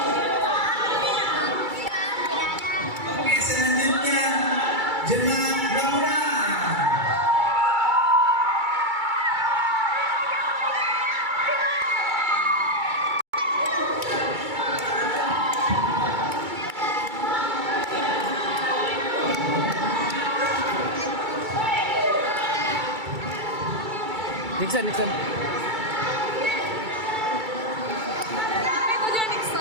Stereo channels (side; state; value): left; late; 2.3 ms